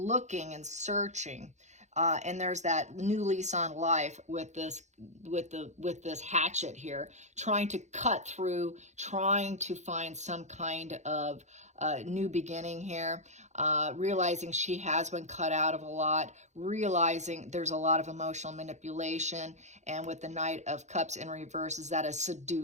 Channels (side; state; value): left; late; 0.34 ms